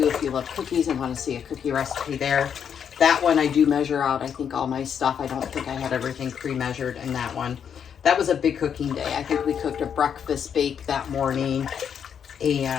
if you love cookies and want to see a cookie recipe there. That one I do measure out, I think, all my stuff. I don't think I had everything pre-measured in that one. That was a big cooking day. I think we cooked a breakfast bake that morning,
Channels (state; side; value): quieter; right; 7.9 dB